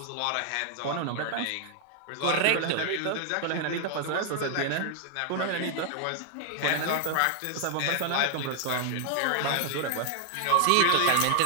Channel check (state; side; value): different; both; correlation 0.00